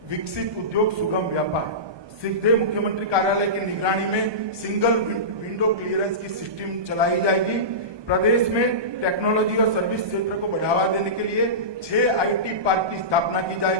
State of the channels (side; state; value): left; late; 1.2 ms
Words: विकसित उद्योग सुगम व्यापार, सीधे मुख्यमंत्री कार्यालय की निगरानी में सिंगल विंडो क्लियरेंस की सिस्टम चलाई जाएगी। प्रदेश में टेक्नोलॉजी और सर्विस क्षेत्र को बढ़ावा देने के लिए 6 आईटी पार्क की स्थापना की